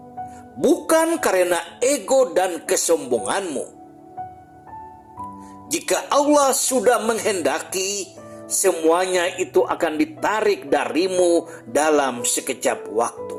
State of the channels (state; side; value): identical; both; correlation 1.00